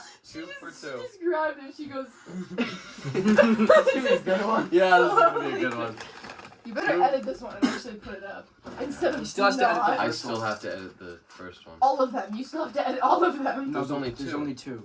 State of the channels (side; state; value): both; identical; correlation 1.00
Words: for 2. She just grabbed it. She goes, That's gonna be a good one. Yeah, this is gonna be a good one. you better edit this one and actually put it up. Instead of He still has to edit not. the I first still one. have to edit the first one. All of them. You still have to edit all of them. No, There's only There's two. only